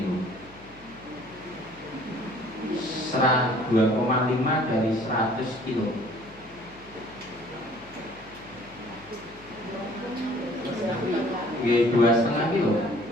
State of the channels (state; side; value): noise; left; hum, 23 dB below the sound